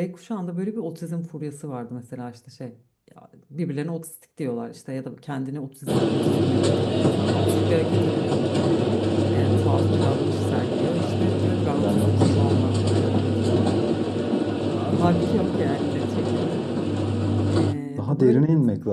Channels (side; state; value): both; identical; correlation 1.00